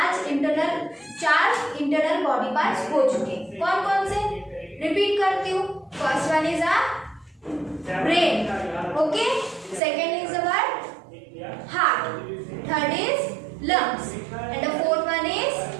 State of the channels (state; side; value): drops out; left; at 9.8 s